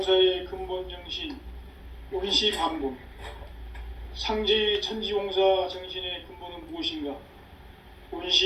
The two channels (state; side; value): identical; both; correlation 1.00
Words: 근본 정신 원시반복. 상제의 천지공사 정신의 근본은 무엇인가?